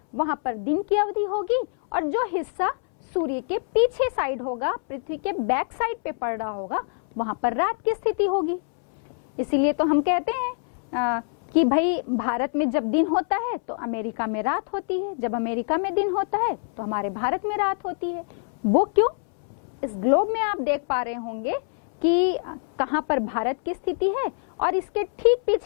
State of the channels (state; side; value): silent; right; 62 dB below the other